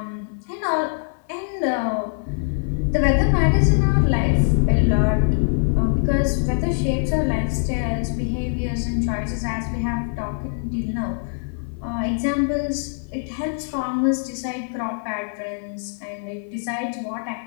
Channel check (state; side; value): silent; right; 56 dB below the other